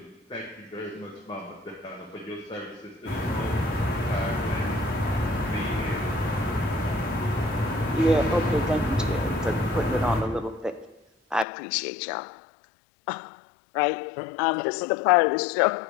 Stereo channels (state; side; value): drops out; right; at 11.5 s